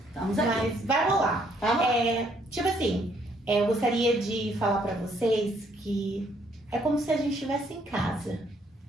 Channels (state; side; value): normal; both; correlation 0.68